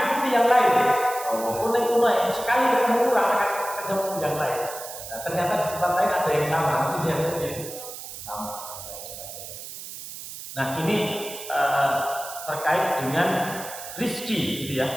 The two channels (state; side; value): noise; right; hiss, 11 dB below the sound